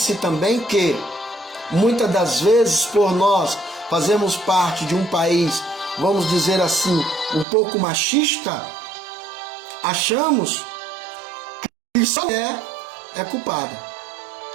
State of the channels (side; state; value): left; drops out; at 7.5 s